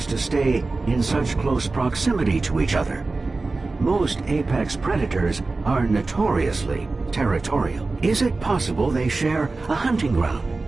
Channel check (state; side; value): quieter; left; 3.6 dB